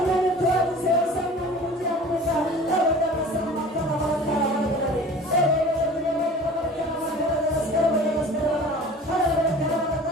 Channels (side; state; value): both; normal; correlation 0.43